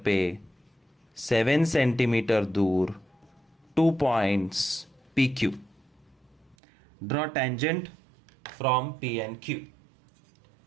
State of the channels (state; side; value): drops out; left; at 6.6 s